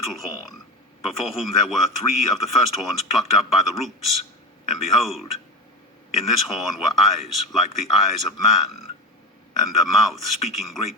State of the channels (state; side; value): normal; both; correlation 0.22